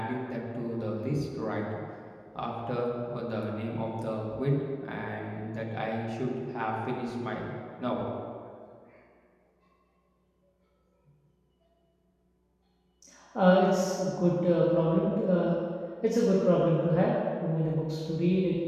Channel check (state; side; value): identical; both; correlation 1.00